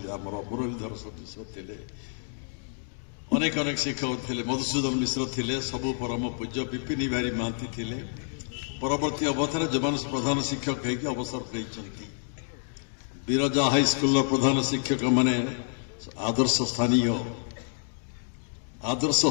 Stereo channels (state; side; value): silent; right; digital silence